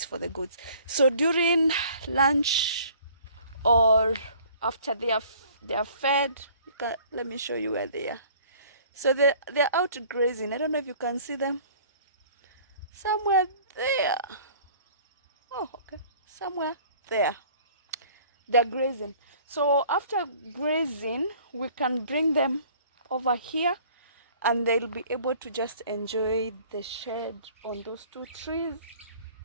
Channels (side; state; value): both; inverted; correlation -0.52